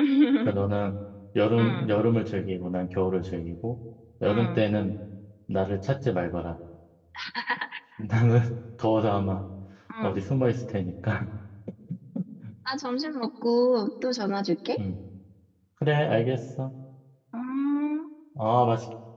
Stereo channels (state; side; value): identical; both; correlation 1.00